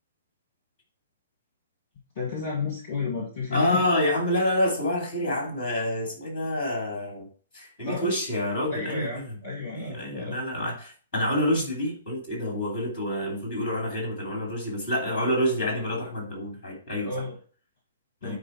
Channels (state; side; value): inverted; both; correlation -0.55